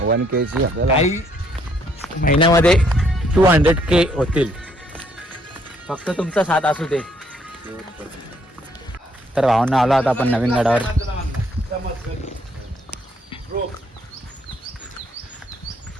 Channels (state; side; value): normal; both; correlation 0.68